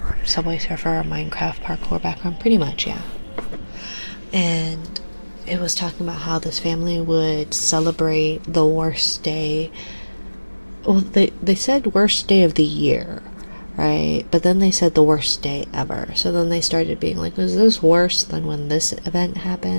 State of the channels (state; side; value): inverted; both; correlation -1.00